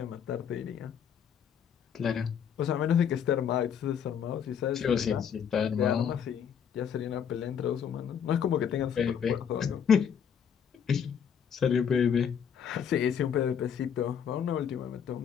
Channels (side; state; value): right; quieter; 7.9 dB